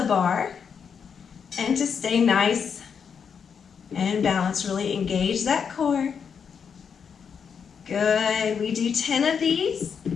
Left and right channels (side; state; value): right; quieter; 6.7 dB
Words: bar and to stay nice and balanced. Really engage that core. Good. We do 10 of these.